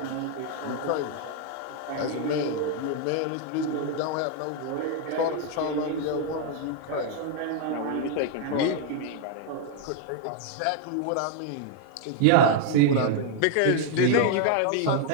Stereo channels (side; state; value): both; different; correlation 0.00